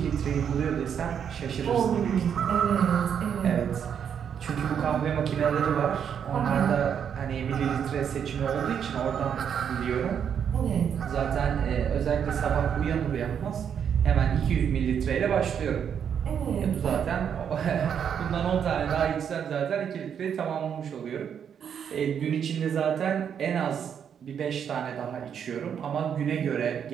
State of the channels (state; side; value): quieter; left; 8.0 dB